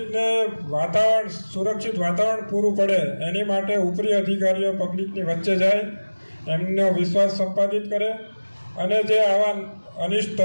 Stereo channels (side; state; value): both; inverted; correlation -1.00